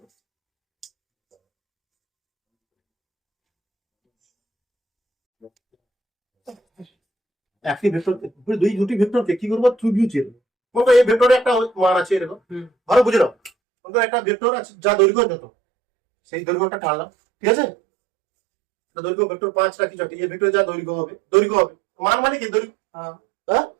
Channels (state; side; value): drops out; left; at 13.5 s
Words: একটি ভেক্টর, দুটি ভেক্টরকে কি করবো, ত্রিভুজের, বলতো এই ভেক্টরে একটা মান আছে এরকম, ভালো বুঝে নাও। বলতো একটা ভেক্টর আছে যা দৈর্ঘ্য যত, সেই দৈর্ঘ্যটা টানলাম, ঠিক আছে, দৈর্ঘ্য ভেক্টর 5 রাখি চটি, এই ভেক্টরে যা দৈর্ঘ্য হবে, মান মানে কি, দৈর্ঘ্য। হ্যাঁ,